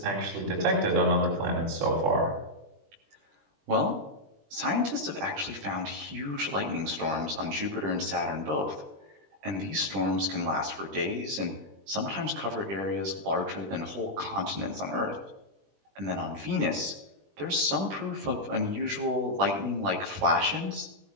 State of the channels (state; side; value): late; left; 20 ms